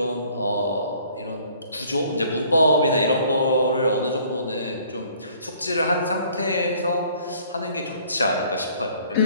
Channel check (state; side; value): inverted; both; correlation -0.57